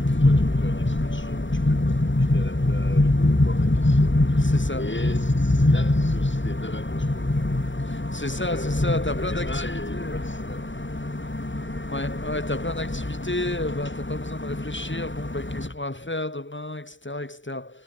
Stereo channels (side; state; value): right; late; 0.55 ms